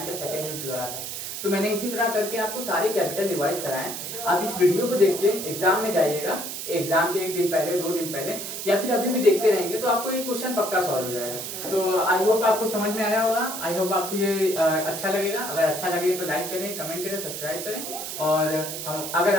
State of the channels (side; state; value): right; noise; hiss, 6 dB below the sound